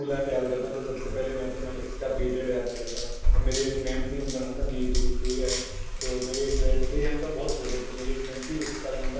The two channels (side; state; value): both; identical; correlation 1.00